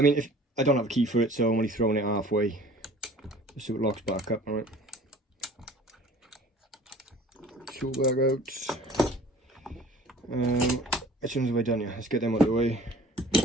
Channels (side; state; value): both; normal; correlation 0.48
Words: if I don't have a key for it, so I'm only throwing it halfway. Just so it locks back up, alright. Tool bag out. Which ones have I done here? Let's get them out of the way.